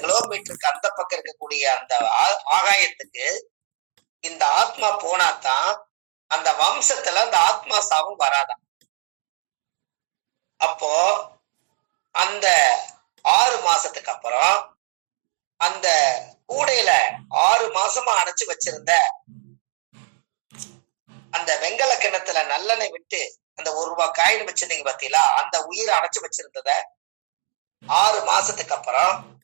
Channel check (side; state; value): left; silent; digital silence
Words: கிலோமீட்டருக்கு அந்த பக்கம் இருக்கக்கூடிய அந்த ஆகாயத்துக்கு இந்த ஆத்மா போனாதான் அந்த வம்சத்துல அந்த ஆத்மா சாவும் வராதான். அப்போ அந்த 6 மாசத்துக்கு அப்புறம் அந்த கூடையில 6 மாசமா அடைச்சு வச்சிருந்த அந்த வெங்கல கிணத்துல நல்லெண்ணெய் விட்டு அந்த 1 ரூபாய் காயின் வச்சிருந்தீங்க பாத்தீங்களா, அந்த உயிரை அடைச்சு வச்சிருந்தத 6 மாசத்துக்கு அப்புறம்